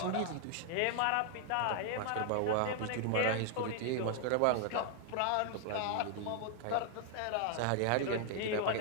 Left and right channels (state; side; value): different; both; correlation 0.00